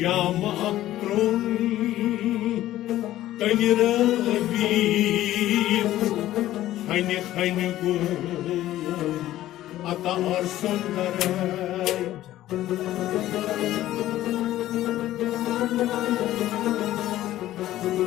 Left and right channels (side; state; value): right; quieter; 14.2 dB